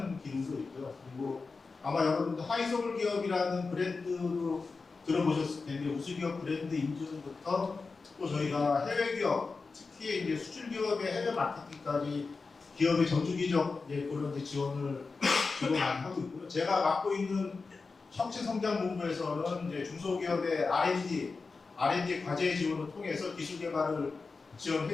기능도 있고요. 그리고 아마 여러분들 하이서울 기업이라는 브랜드로 들어보셨을 텐데 우수기업 브랜드 인증부터 또 저희가 해외 기업, 특히 이제 수출 기업의 해외 마케팅까지 기업의 전주기적 그런 지원을 주로 많이 하고 있고요. 제가 맡고 있는 혁신성장본부에서는 이제 중소기업의 R&D 과제 지원을 통해서 기술 개발을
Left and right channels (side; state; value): right; quieter; 4.3 dB